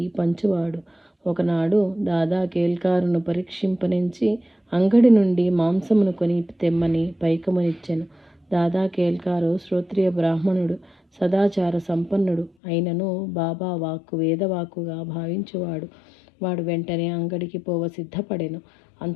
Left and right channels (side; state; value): right; drops out; at 12.5 s